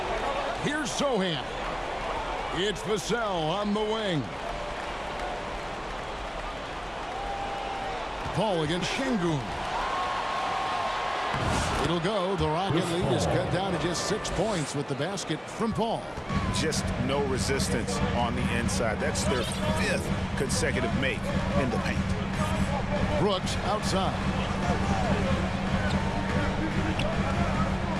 Here's Zohan. It's Vassell on the wing. Paul against Şengün. It'll go. The Rocket lead is cut down to just 6 points with the basket from Paul. Just no resistance on the inside. That's their 5th consecutive make in the paint. Brooks outside.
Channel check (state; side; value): identical; both; correlation 1.00